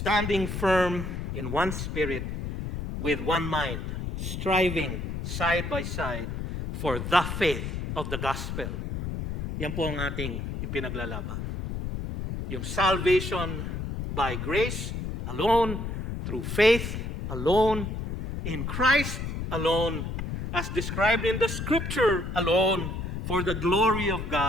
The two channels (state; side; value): noise; left; rumble, 4 dB below the sound